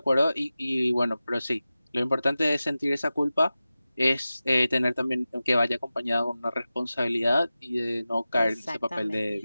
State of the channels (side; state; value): both; inverted; correlation -0.95